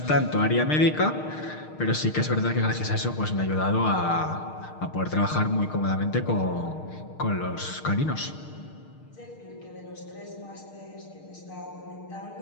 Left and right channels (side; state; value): right; late; 6.5 ms